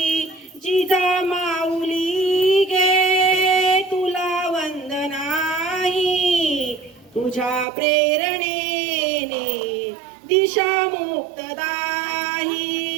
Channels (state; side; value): drops out; left; at 7.7 s